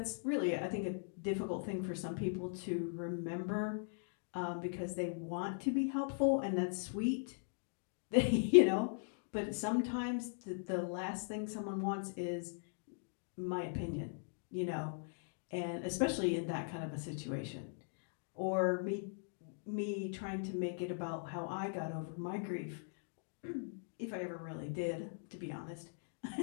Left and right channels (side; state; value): right; silent; digital silence